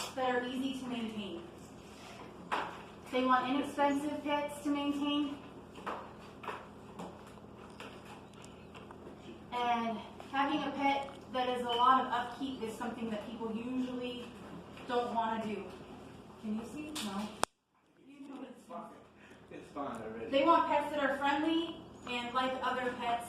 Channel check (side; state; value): both; identical; correlation 1.00